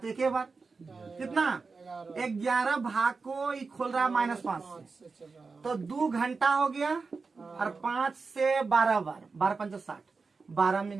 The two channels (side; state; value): left; quieter; 4.5 dB